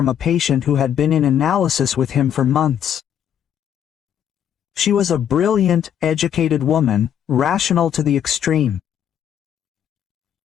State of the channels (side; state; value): right; quieter; 9.4 dB